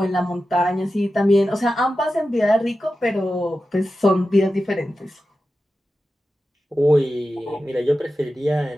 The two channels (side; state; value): both; normal; correlation 0.92